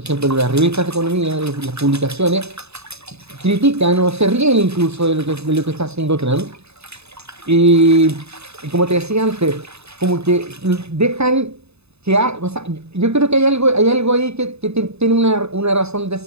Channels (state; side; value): late; left; 0.80 ms